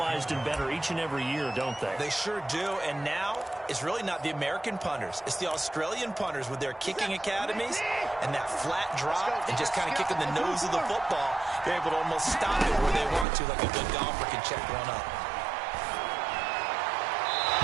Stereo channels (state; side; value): drops out; left; at 13.2 s